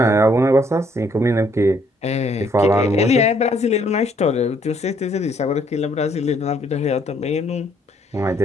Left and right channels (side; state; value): both; normal; correlation 0.67